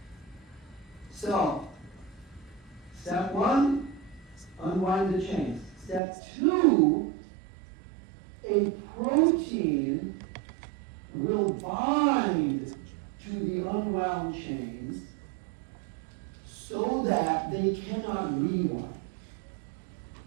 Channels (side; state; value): left; drops out; at 6.0 s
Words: So, step one, unwind the chains. Step two, a protein will bind to the unwound chains so that they cannot rewind.